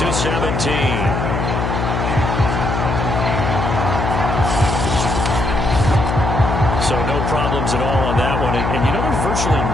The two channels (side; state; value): left; noise; hum, 1 dB below the sound